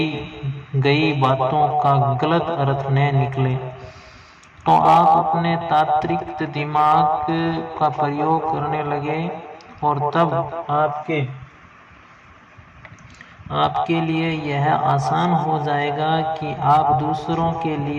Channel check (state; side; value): identical; both; correlation 1.00